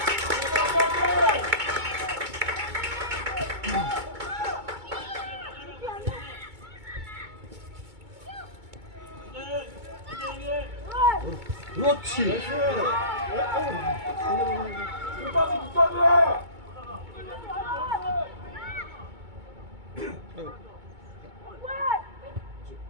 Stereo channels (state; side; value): late; left; 2.2 ms